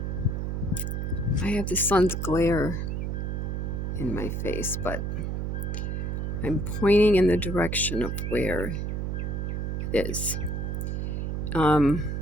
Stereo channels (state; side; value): noise; right; hum, 2 dB below the sound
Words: I have the sun's glare in my face, but I'm pointing in the direction of where it is.